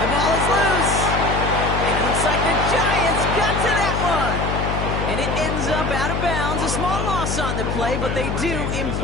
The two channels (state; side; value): noise; left; hum, 2 dB below the sound